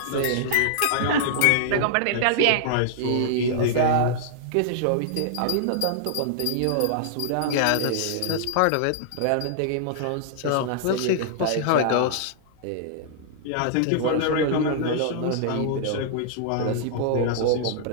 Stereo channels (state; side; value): different; both; correlation -0.01